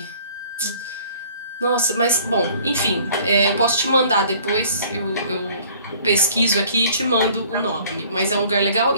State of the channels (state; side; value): inverted; both; correlation -0.54